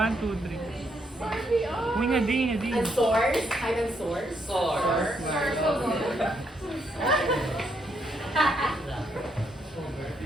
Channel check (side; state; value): both; normal; correlation 0.75